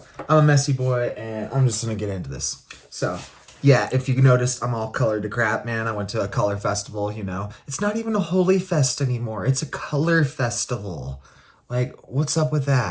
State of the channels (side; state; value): both; identical; correlation 1.00